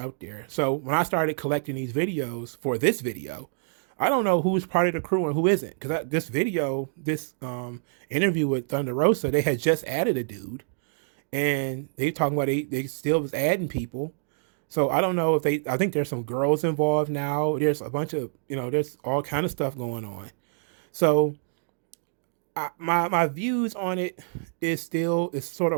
there. So when I started collecting these videos for this video, I don't know who's part of the crew and who isn't. Because this interview with Thunder Rosa, they had just added a dude, and they talking about they still was adding people. So I don't know if they. I think there's some girls involved now. There's a bunch of there's all kind of stuff going on. So my views on it is sort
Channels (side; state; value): left; silent; digital silence